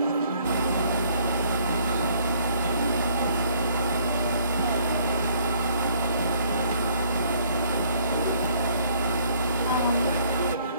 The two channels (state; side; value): inverted; both; correlation -0.62